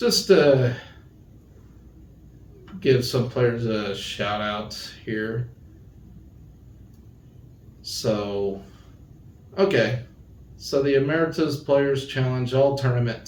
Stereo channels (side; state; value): both; identical; correlation 1.00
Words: to give some players a shout out here. So, okay. So the Emeritus Players Challenge All Tournament